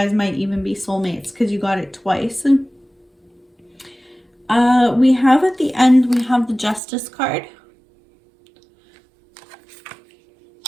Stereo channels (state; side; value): drops out; left; at 6.8 s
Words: might even be soulmates because you got it twice. We have at the end, we have the Justice card.